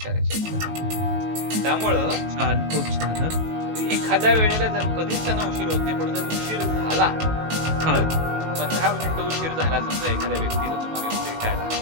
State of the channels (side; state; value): left; late; 18 ms